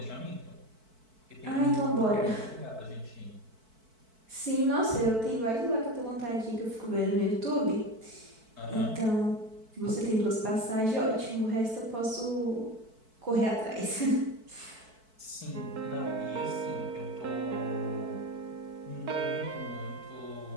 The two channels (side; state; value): left; late; 4.5 ms